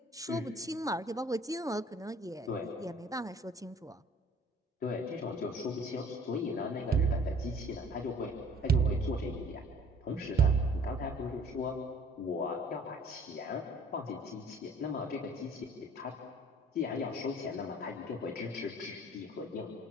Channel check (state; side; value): normal; both; correlation 0.54